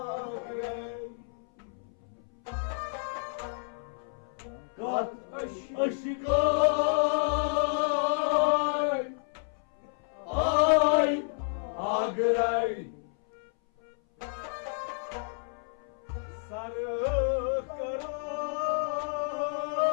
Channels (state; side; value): silent; right; 58 dB below the other